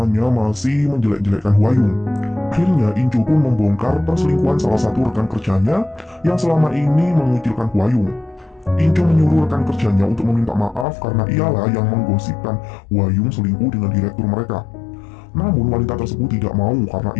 masih menjelek-jelekkan Hwa Young. Akhirnya In Ju pun membongkar perselingkuhan salah satu rekan kerjanya yang selama ini mengucilkan Hwa Young. In Ju menyuruh rekan kerjanya untuk meminta maaf karena ialah yang menggosipkan Hwa Young selingkuh dengan direktur mereka. Namun wanita tersebut tidak mau karena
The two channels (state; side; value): drops out; right; at 10.9 s